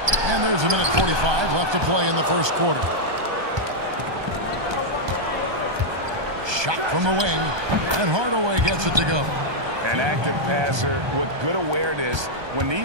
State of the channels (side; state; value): left; late; 1.2 ms